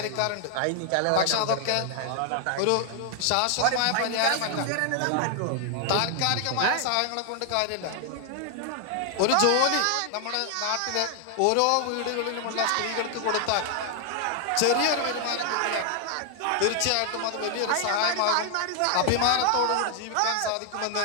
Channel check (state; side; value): different; both; correlation 0.00